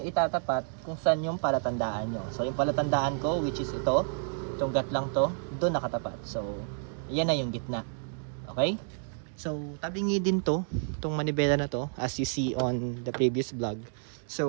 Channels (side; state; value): left; silent; 58 dB below the other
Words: itatapat kung saan yung palatandaan nyo. So, yung palatandaan ko, which is ito, itong gat lang to, dun nakatapat. So, yan na yung gitna. Okay? So, tabingi din to, itong manibela na to, as you see on the previous vlog.